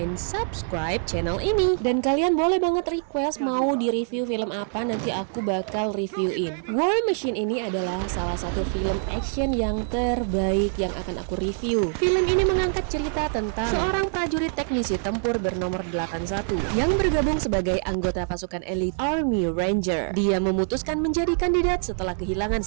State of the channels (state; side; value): silent; left; 59 dB below the other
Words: subscribe channel ini. Dan kalian boleh banget request mau di review film apa, nanti aku bakal reviewin. War Machine ini adalah salah satu film action yang terbaik yang akan aku review. Film ini mengangkat cerita tentang seorang prajurit teknisi tempur bernomor 81 yang bergabung sebagai anggota pasukan elit Army Ranger. Dia memutuskan menjadi kandidat setelah kehilangan